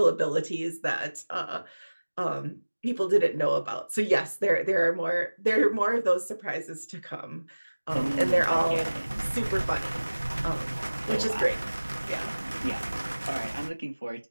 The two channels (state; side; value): inverted; both; correlation -1.00